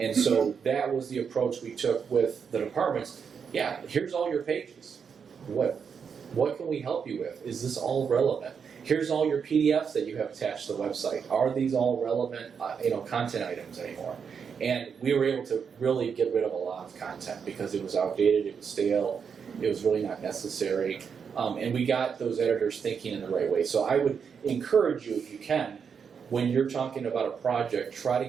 so that was the approach we took with the departments. Yeah, here's all your pages. What can we help you with? Is this all relevant? Here's all your PDFs that you have attached to the website. Are these all relevant, content items anymore? And we were able to really get rid of a lot of content because it was outdated, it was stale, it was really not necessary. And we got those editors thinking in the right way. So I would encourage you, if you can, when you're talking about a project, try to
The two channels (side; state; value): left; quieter; 6.6 dB